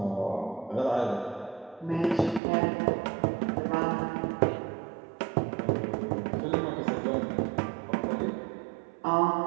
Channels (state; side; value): drops out; left; at 2.4 s